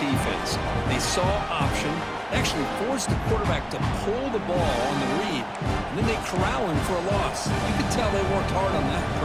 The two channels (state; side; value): identical; both; correlation 1.00